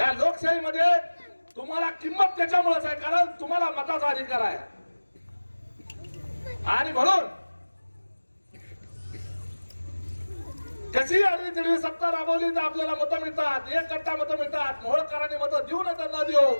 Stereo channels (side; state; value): both; inverted; correlation -1.00